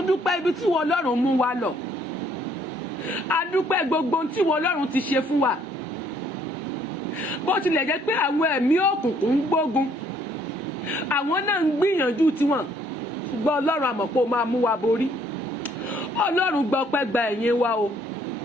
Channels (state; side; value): normal; both; correlation 0.64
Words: dúpẹ́ ibi tí wọn Ọlọ́run mú wa lọ adúpẹ́ gbogbo tí wọn Ọlọ́run ti ṣe fún wa bó tilẹ̀ jẹ́ pé àwọn ẹ̀mí òkùnkùn ń gbógun àwọn náà ń gbìyànjú tiwọn ṣùgbọ́n Ọlọ́run àmọ̀ pé ó máa mú wa borí Ọlọ́run gbọ́ pẹ́ gba ẹ̀yìn wa o